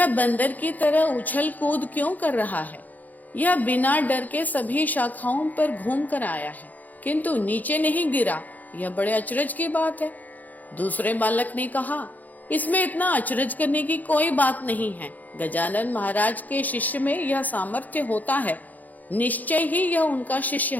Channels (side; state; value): right; late; 0.081 ms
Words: बंदर की तरह उछल कूद क्यों कर रहा है? यह बिना डर के सभी शाखाओं पर घूम कर आया है, किंतु नीचे नहीं गिरा। यह बड़े अचरज की बात है। दूसरे बालक ने कहा, इसमें इतना अचरज करने की कोई बात नहीं है। गजानन महाराज के शिष्य में यह सामर्थ्य होता है, निश्चय ही यह उनका शिष्य